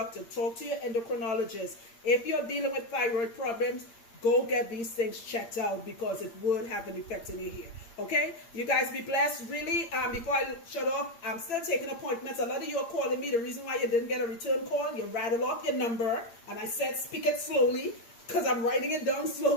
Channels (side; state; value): right; late; 8.7 ms